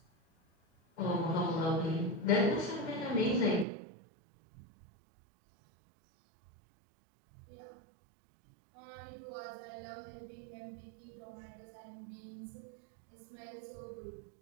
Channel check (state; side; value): drops out; left; at 3.7 s